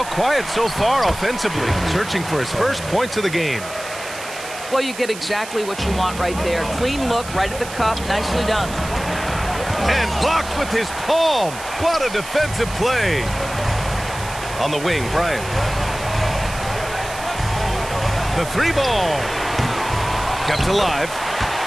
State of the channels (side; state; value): right; noise; hiss, 13 dB below the sound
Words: quiet so far offensively, searching for his first points of the game. Well, you get exactly what you want right there. Clean look, right at the cup. Nicely done. And blocked with his palm. What a defensive play. On the wing, Bryant. The 3 ball. Kept alive.